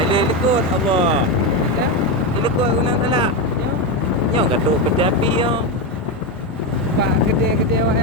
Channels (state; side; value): normal; both; correlation 0.11